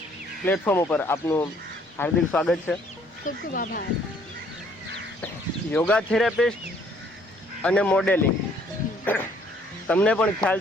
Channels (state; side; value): normal; both; correlation 0.63